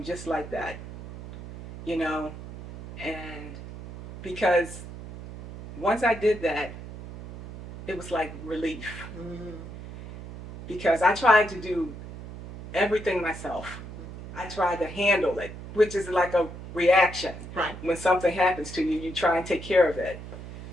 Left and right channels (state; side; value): noise; right; hum, 12 dB below the sound